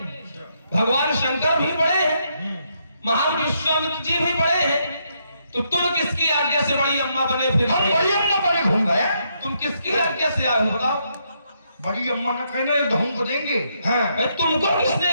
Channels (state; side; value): inverted; both; correlation -0.77